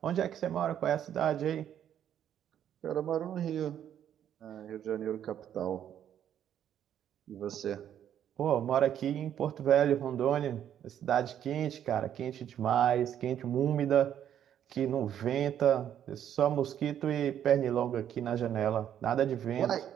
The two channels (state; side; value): quieter; left; 10.0 dB